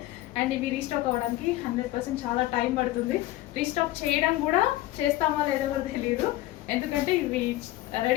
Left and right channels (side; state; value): right; quieter; 16.4 dB